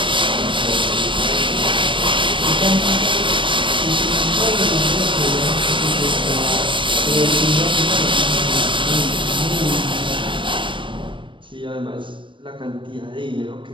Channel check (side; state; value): left; late; 0.24 ms